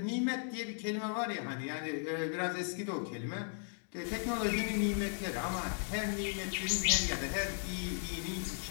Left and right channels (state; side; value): silent; right; 53 dB below the other